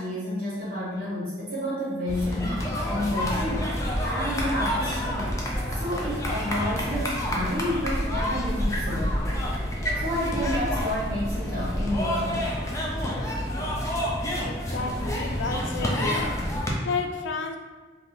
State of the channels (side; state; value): both; normal; correlation 0.53